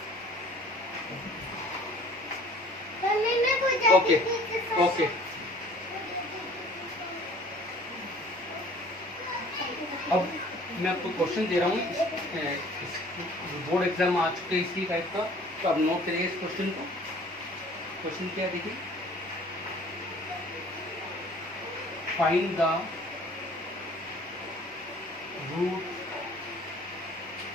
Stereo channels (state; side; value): normal; both; correlation 0.51